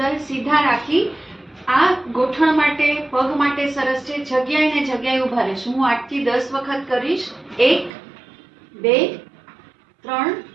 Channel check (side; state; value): left; drops out; at 7.9 s